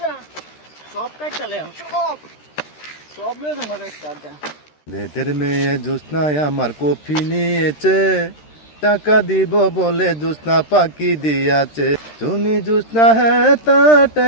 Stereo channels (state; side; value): late; right; 13 ms